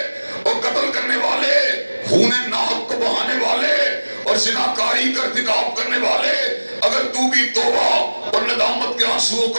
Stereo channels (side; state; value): both; inverted; correlation -1.00